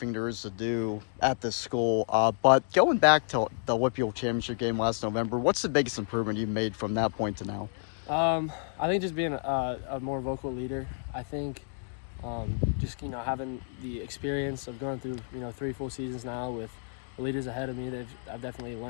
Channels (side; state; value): right; silent; digital silence